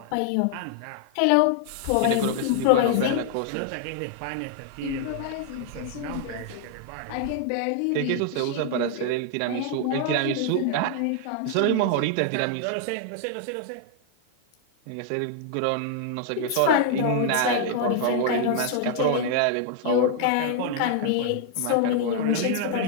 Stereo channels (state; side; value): different; both; correlation 0.00